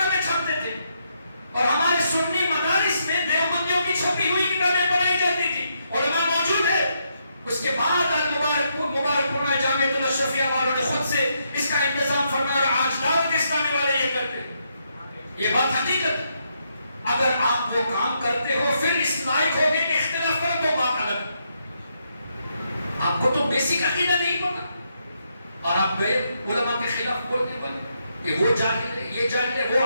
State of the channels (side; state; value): both; inverted; correlation -0.78